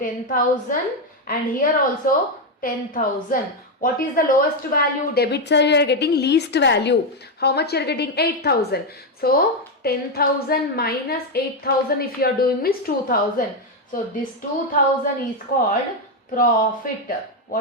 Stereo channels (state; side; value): normal; both; correlation 0.06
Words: and here also 10,000. What is the lowest value? Debit side you are getting least value. How much you are getting? 8,000. So 10,000 minus 8,000 if you are doing means 2,000. So this 2,000 is called profit.